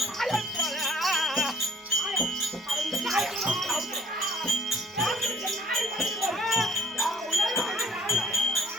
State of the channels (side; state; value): both; normal; correlation 0.55